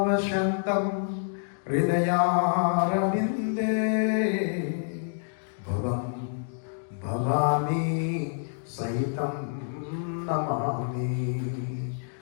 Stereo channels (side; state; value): right; silent; digital silence